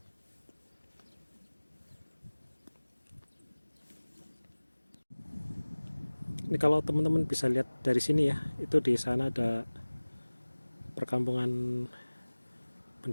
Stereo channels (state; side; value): inverted; both; correlation -1.00